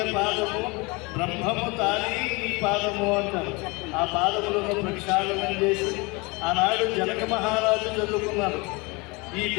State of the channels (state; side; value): quieter; right; 26.8 dB